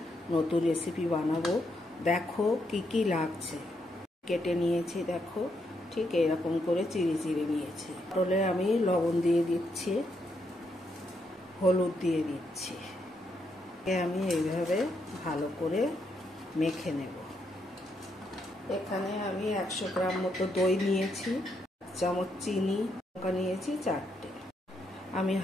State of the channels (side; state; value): both; normal; correlation 0.78